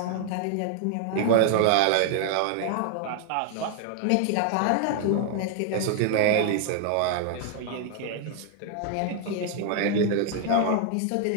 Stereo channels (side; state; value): both; different; correlation 0.00